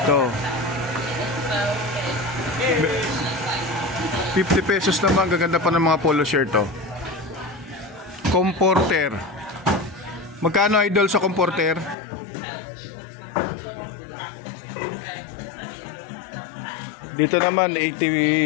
Ito. 50 pesos naman, gaganda pa ng mga polo shirt Comforter. Magkano idol sa comforter? Dito naman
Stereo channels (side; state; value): right; drops out; at 12.0 s